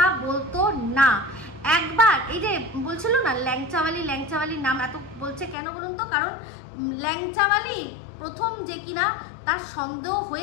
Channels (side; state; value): right; drops out; at 5.6 s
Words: বলতো না। একবার এই যে বলছিল না ল্যাংচাওয়ালির নাম এত বলছে কেন বলুন তো? কারণ ল্যাংচাওয়ালি প্রথম যে কিনা তার সন্দেহ